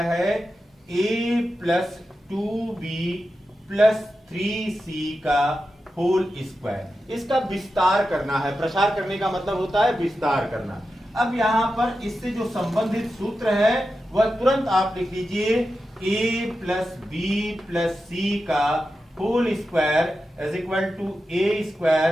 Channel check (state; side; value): normal; both; correlation 0.91